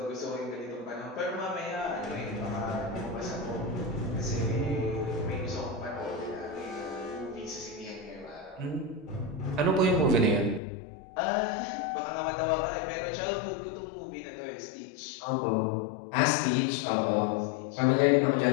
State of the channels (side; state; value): right; drops out; at 10.6 s